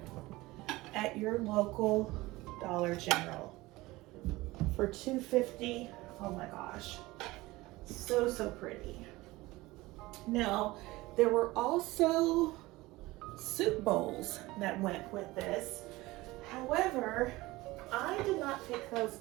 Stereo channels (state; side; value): quieter; left; 19.9 dB